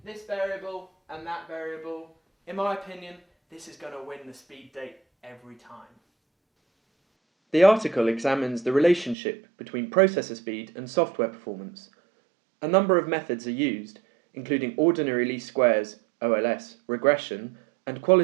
this variable and that variable, in my opinion, this is going to win the speed date every time. The article examines the relationship between processor speed and software performance. A number of methods are used, including ordinary least squares, OLS, regression, and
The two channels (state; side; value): drops out; left; at 9.2 s